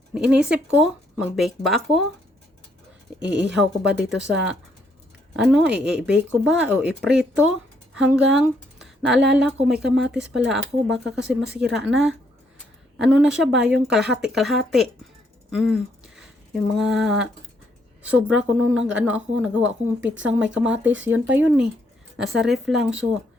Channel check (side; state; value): both; normal; correlation 0.72